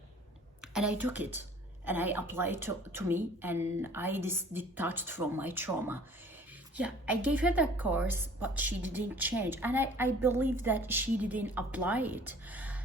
and I took it, and I applied to me, and I detached from my trauma. Yeah, I gave her that course, but she didn't change. And I believe that she didn't apply it.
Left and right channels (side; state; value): both; normal; correlation 0.51